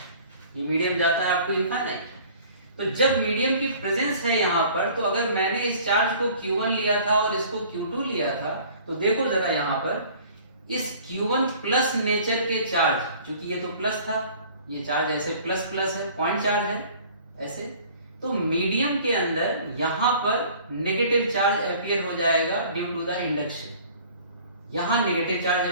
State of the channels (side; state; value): both; inverted; correlation -0.50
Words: ये मीडियम जाता है अप टू इनफाइनाइट। तो जब मीडियम की प्रेजेंस है यहाँ पर, तो अगर मैंने इस चार्ज को Q1 लिया था और इसको Q2 लिया था, तो देखो जरा यहाँ पर इस Q1 प्लस नेचर के चार्ज, क्योंकि ये तो प्लस था, ये चार्ज ऐसे प्लस प्लस है, पॉइंट चार्ज है ऐसे, तो मीडियम के अंदर यहां पर नेगेटिव चार्ज अपीयर हो जाएगा ड्यू टू द इंडक्शन, यहां नेगेटिव चार्ज